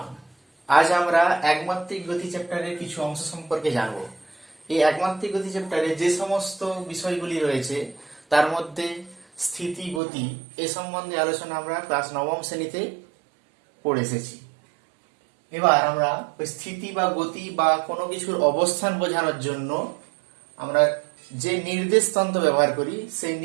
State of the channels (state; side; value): drops out; left; at 10.0 s